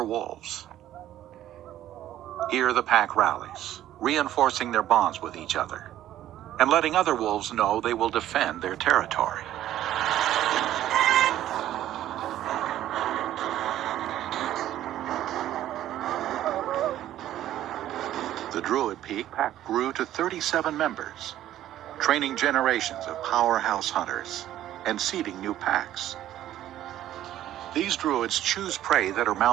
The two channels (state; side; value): quieter; left; 12.7 dB